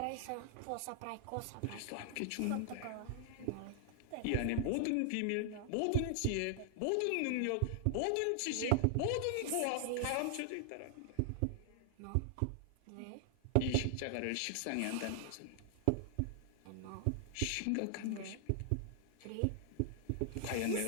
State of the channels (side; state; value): both; different; correlation -0.01